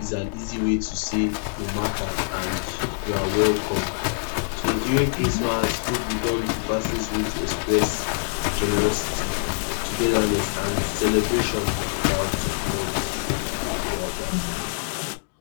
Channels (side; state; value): right; silent; digital silence